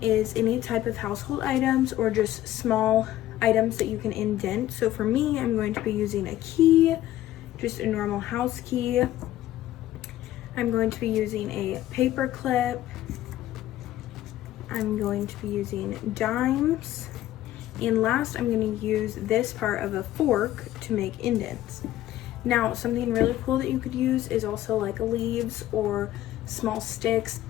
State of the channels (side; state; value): right; quieter; 13.9 dB